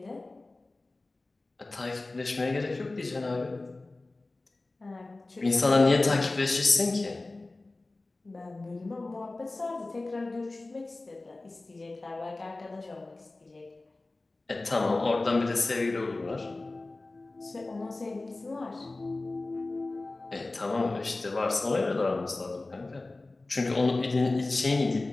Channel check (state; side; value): quieter; right; 3.1 dB